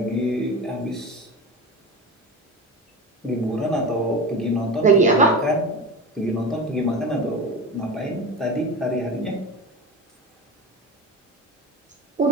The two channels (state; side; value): normal; both; correlation 0.27